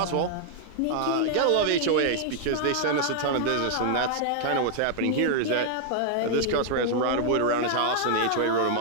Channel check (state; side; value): different; both; correlation -0.01